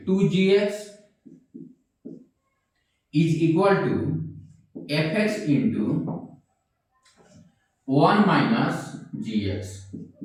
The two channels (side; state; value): both; identical; correlation 1.00